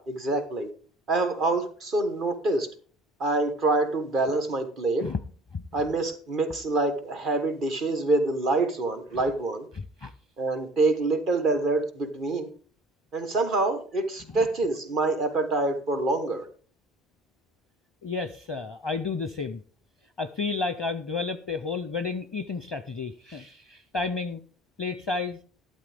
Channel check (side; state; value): both; normal; correlation 0.46